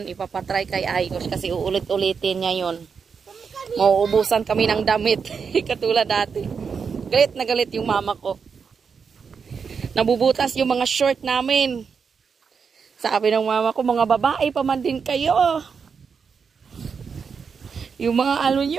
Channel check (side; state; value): left; quieter; 6.0 dB